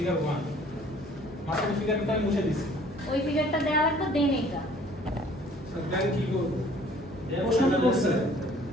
1 মাঝখানে ফিগারটা আমি মুছে দিছি ওই ফিগারটা দেওয়া লাগবে দেন এটা স্যার দেন কি করব প্রশ্ন কি করছে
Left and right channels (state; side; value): normal; both; correlation 0.55